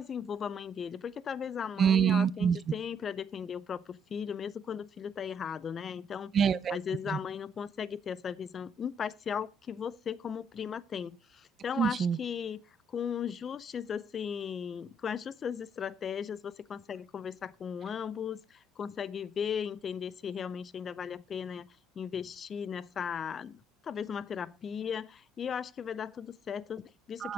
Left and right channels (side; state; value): both; normal; correlation 0.69